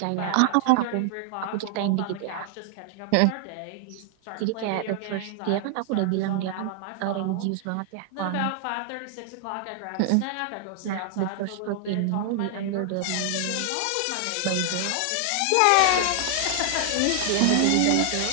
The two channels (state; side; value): different; both; correlation 0.00